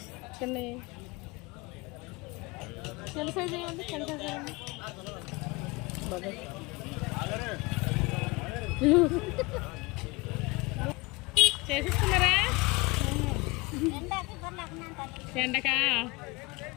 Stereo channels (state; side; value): quieter; right; 24.9 dB